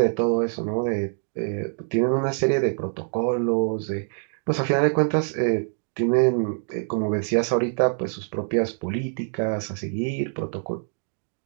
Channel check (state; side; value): silent; left; digital silence